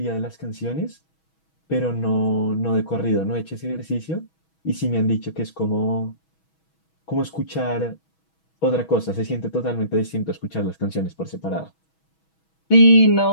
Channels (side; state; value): right; late; 6.2 ms